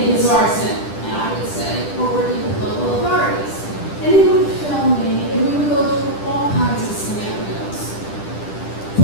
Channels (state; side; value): late; right; 10 ms